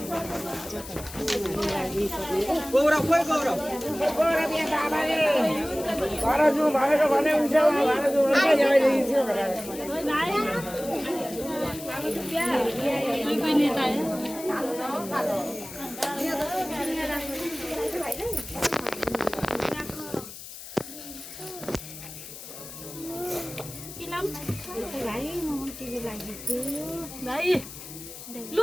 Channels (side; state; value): left; noise; hiss, 13 dB below the sound